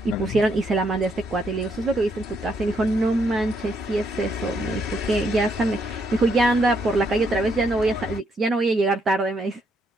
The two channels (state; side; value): normal; both; correlation 0.75